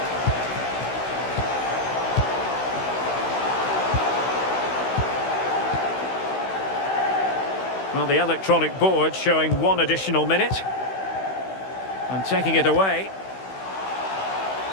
Well, the electronic board showing 1 additional minute. And taking it away.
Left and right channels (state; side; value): late; right; 16 ms